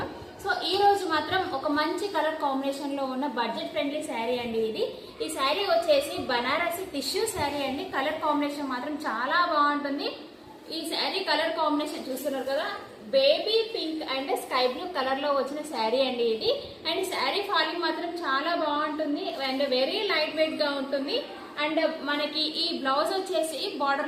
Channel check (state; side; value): identical; both; correlation 1.00